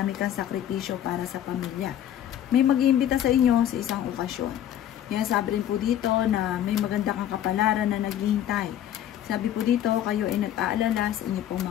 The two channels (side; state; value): right; quieter; 11.1 dB